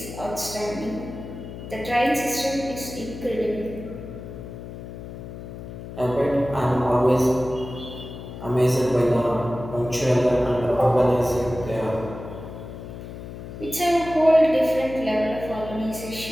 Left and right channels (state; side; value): noise; left; hum, 11 dB below the sound